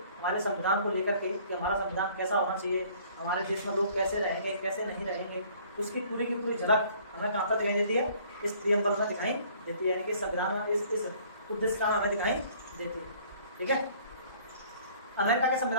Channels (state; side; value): inverted; both; correlation -0.56